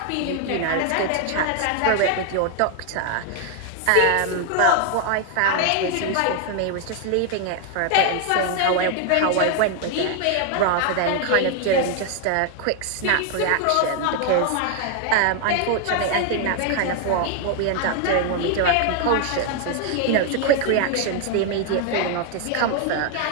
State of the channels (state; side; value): different; both; correlation 0.00